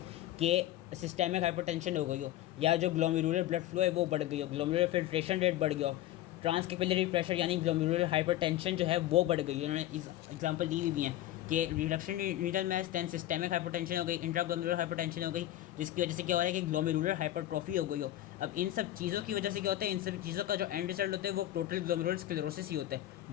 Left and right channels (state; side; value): quieter; right; 14.1 dB